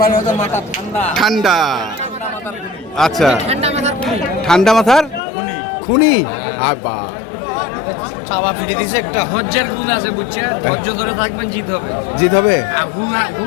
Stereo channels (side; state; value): right; drops out; at 5.2 s